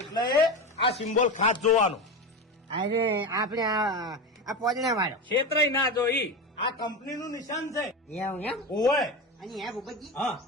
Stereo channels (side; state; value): both; normal; correlation 0.22